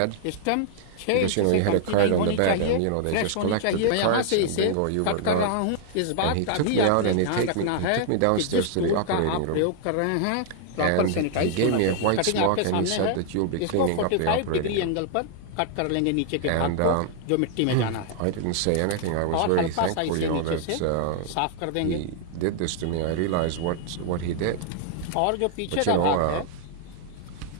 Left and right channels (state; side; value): different; both; correlation 0.00